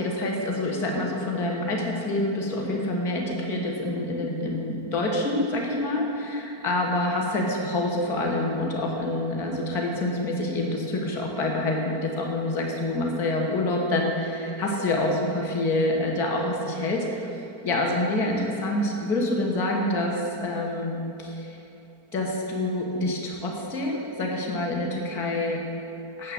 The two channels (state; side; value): late; left; 4.5 ms